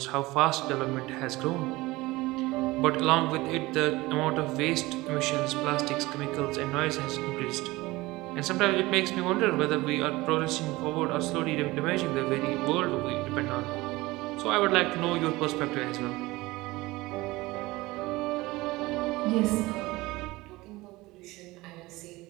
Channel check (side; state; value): left; quieter; 20.4 dB